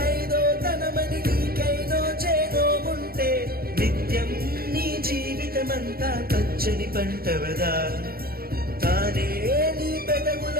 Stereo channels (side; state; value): left; late; 0.44 ms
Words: ఐదో తనమని నీకైనో చేదో ఉంటే నిత్యం నీ జీవితమంతా పచ్చని పంటవదా తానే నీ